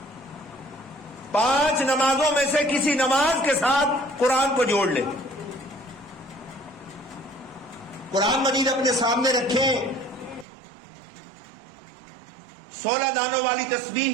5 نمازوں میں سے کسی نماز کے ساتھ قرآن کو جوڑ لیں. قرآن مجید اپنے سامنے رکھیں، 16 دانوں والی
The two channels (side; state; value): left; drops out; at 10.5 s